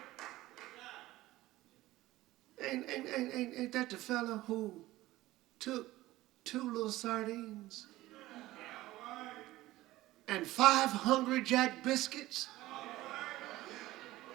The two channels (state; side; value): quieter; left; 17.1 dB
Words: Ain't that the fella who took 2 little sardines and 5 Hungry Jack biscuits?